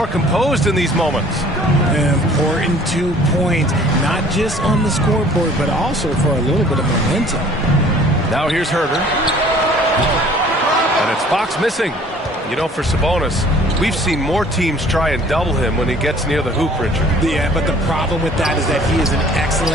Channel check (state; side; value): normal; both; correlation 0.52